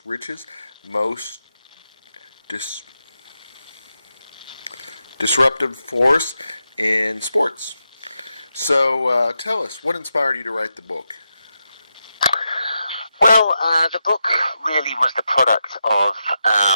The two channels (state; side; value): inverted; both; correlation -0.87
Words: Richest, Most Disruptive Force in Sports. So tell us, what inspired you to write the book? Well, the book really was the product of